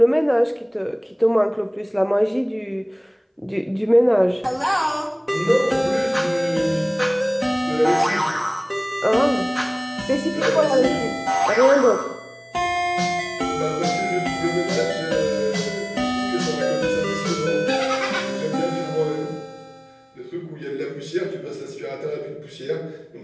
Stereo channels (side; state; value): both; identical; correlation 1.00